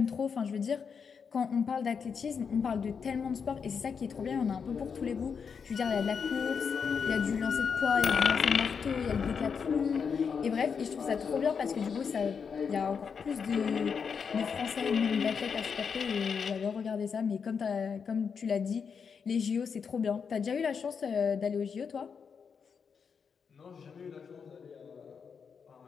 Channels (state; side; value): quieter; right; 6.2 dB